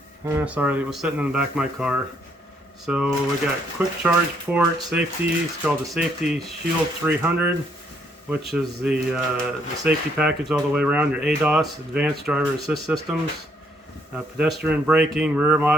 Sorry, it was sitting in the back of my car. So we got quick charge port, safety, it's called the Safety Shield 300, which is the safety package all the way around, your ADAS, Advanced Driver Assist Systems, pedestrian braking, rear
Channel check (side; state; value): both; normal; correlation 0.70